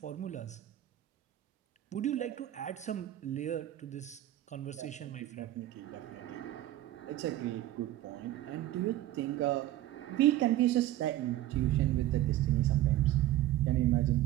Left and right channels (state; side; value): quieter; left; 14.3 dB